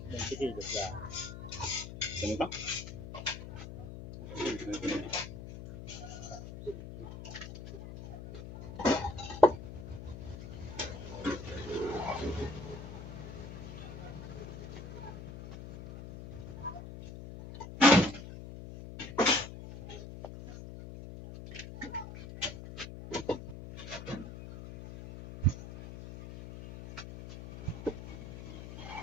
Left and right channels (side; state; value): left; noise; hum, 10 dB below the sound